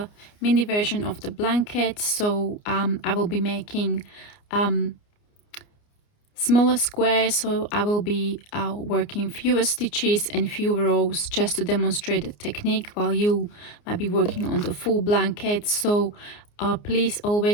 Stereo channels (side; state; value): right; late; 29 ms